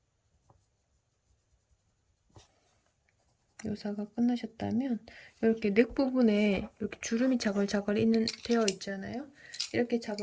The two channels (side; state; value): both; identical; correlation 1.00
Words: 묘사가 끝나셨다면 이렇게 넥 부분에 이렇게 주름이 자글자글 되어 있잖아요. 이렇게